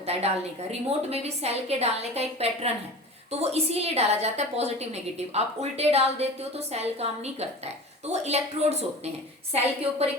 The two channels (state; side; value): normal; both; correlation 0.35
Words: है डालने का। रिमोट में भी सेल के डालने का एक पैटर्न है, तो वो इसीलिए डाला जाता है पॉजिटिव नेगेटिव। आप उल्टे डाल देते हो तो सेल काम नहीं करता है। तो वो इलेक्ट्रोड्स होते हैं। सेल के ऊपर